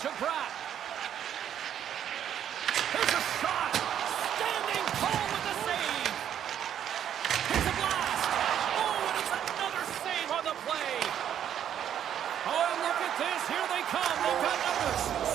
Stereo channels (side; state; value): left; quieter; 9.7 dB